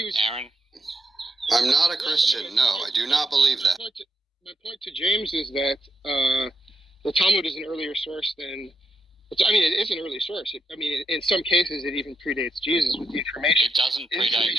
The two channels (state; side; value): normal; both; correlation 0.82